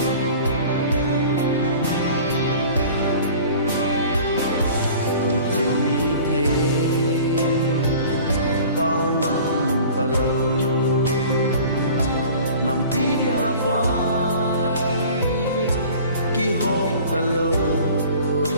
mi thế bao năm ta lâu nằm đi dia vai khi hôm ta lâu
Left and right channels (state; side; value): inverted; both; correlation -0.44